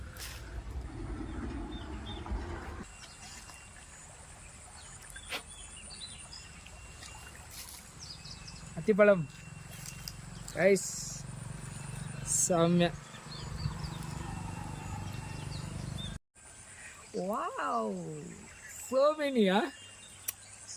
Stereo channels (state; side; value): identical; both; correlation 1.00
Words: அத்திப்பழம் ரைஸ் செம்மையா. Wow, so many, huh?